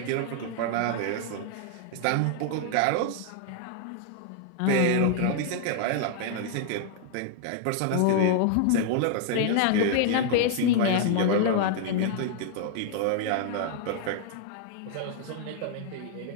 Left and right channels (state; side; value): different; both; correlation 0.00